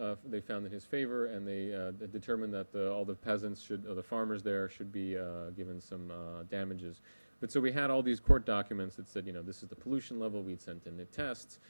they found in his favor, and they determined that all the peasants the farmers there should be given some damages. But so we had all these court documents that said, this is the pollution level. We'd sent in the tests.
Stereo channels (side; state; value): both; inverted; correlation -1.00